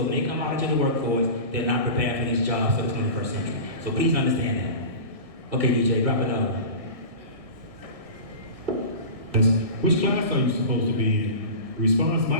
when they come out into the workforce, they're not prepared for these jobs for the 21st century. So please understand that. Okay, DJ, drop it out. Which class are you supposed to be in? Response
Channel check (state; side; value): late; left; 1.6 ms